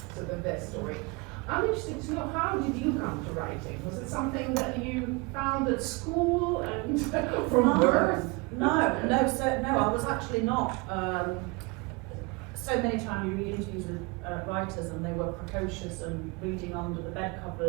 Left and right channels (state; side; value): quieter; left; 27.7 dB